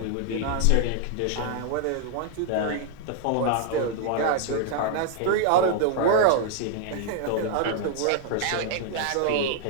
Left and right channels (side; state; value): both; different; correlation 0.00